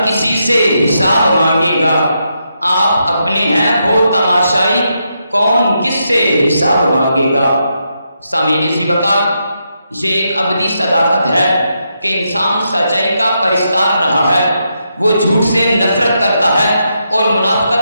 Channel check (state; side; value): inverted; both; correlation -0.82